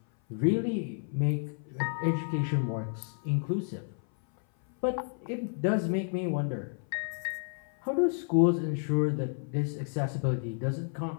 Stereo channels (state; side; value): silent; right; 57 dB below the other